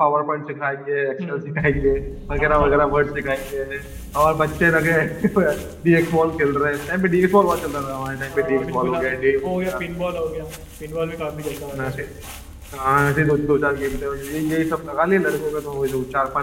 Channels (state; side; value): identical; both; correlation 1.00